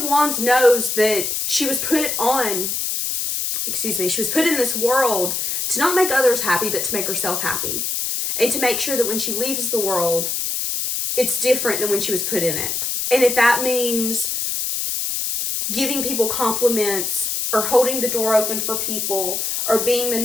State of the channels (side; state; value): left; noise; hiss, 1 dB below the sound